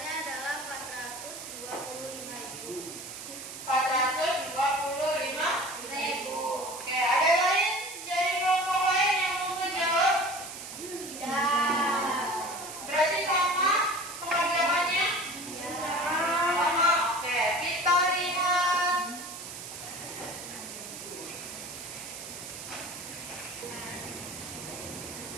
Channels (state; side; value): noise; right; hiss, 10 dB below the sound